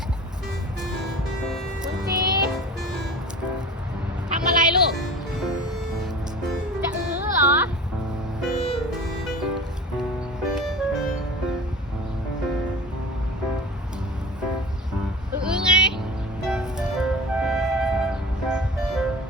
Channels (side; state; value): both; normal; correlation 0.37